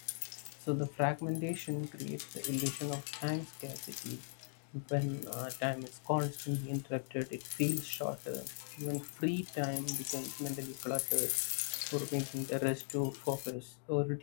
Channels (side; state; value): right; silent; digital silence